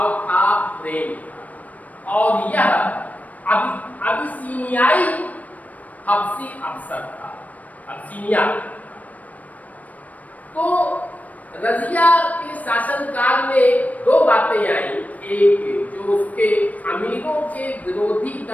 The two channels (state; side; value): late; right; 0.072 ms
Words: था, प्रेम था, और यह अबिसीनियाई हबसी अफसर था। अबिसीनिया। तो रजिया के शासनकाल में 2 बातें आई। एक जो उसके अमीरों के विरोधी